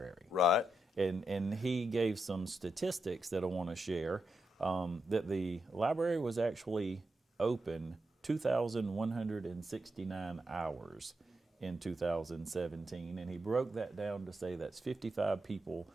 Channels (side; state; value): both; normal; correlation 0.85